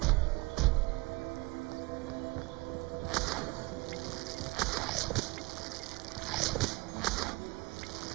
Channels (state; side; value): quieter; left; 23.9 dB